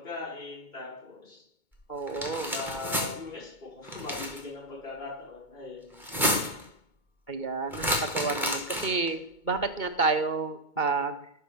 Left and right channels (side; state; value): right; late; 2.2 ms